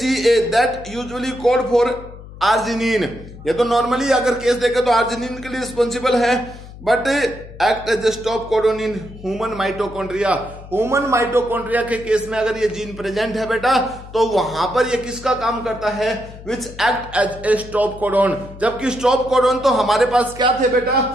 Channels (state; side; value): noise; left; hum, 16 dB below the sound